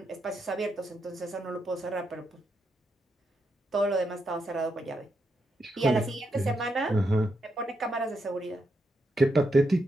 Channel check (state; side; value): normal; both; correlation 0.82